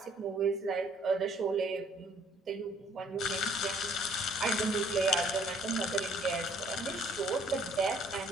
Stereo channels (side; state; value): both; normal; correlation 0.60